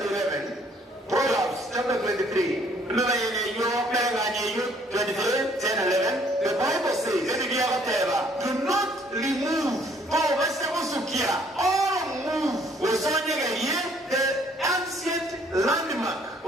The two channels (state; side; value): normal; both; correlation 0.62